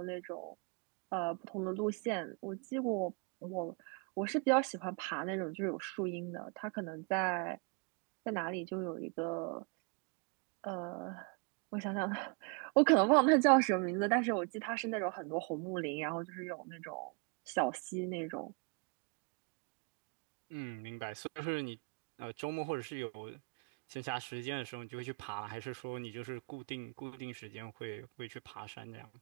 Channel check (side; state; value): left; quieter; 33.6 dB